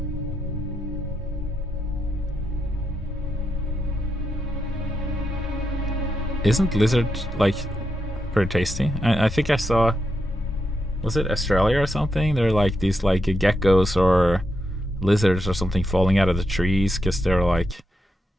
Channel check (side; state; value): both; normal; correlation 0.84